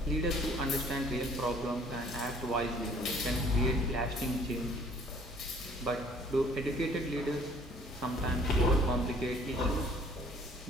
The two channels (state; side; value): normal; both; correlation 0.57